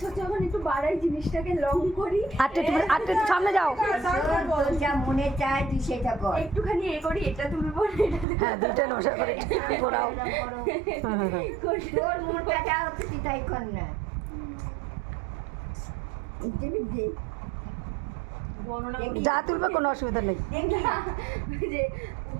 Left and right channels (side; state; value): left; drops out; at 8.2 s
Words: হচ্ছে যখন একটু বাড়াই জিনিসটাকে লং করি আটটা একটু সামনে যাও তোর যা মনে চায় তুই সেটা কর একটুখানি এ করি এটা তুলবো না এটা তুলবো। হ্যাঁ দুইটা নশা করে ঘোরাও তোর মনটা যা হচ্ছে তুই তাই কর না বর্ণনা দেখি। যা তুলবে কোনো অসুবিধা নেই দেখি যে